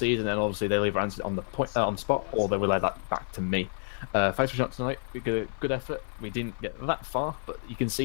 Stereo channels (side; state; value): right; silent; digital silence